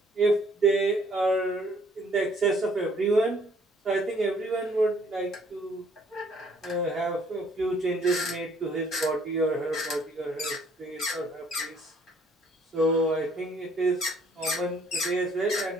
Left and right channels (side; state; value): both; normal; correlation 0.62